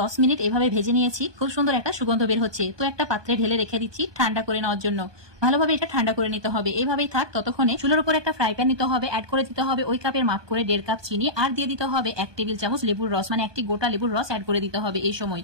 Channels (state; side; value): late; left; 1.2 ms